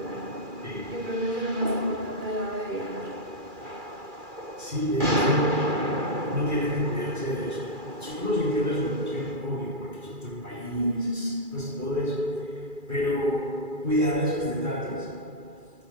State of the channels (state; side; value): late; left; 2.4 ms